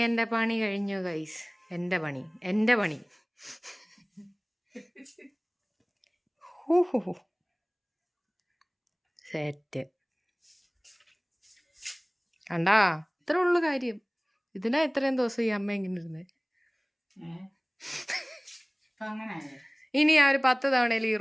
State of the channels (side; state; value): both; identical; correlation 1.00